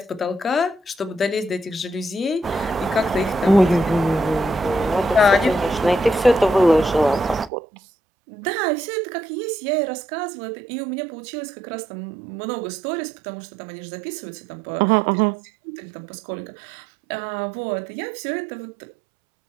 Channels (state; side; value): drops out; left; at 7.5 s